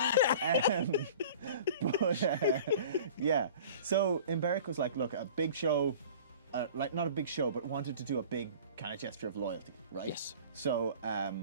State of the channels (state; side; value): inverted; both; correlation -0.43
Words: Yeah. So Emberic was like, look, a big show, like not a big show, but wanted to do a big kind of gesture of loyalty, right? Yes. So I